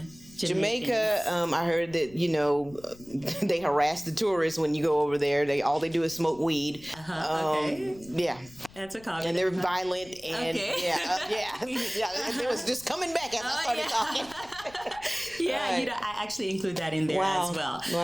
Jamaica, I heard that, they harass the tourists when you go over there. All they do is smoke weed. Okay. Yeah. That's a comment. And they're violent. And it was just coming back as I started talking. Yeah, right. I actually include that in there as well.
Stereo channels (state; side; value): noise; left; rumble, 22 dB below the sound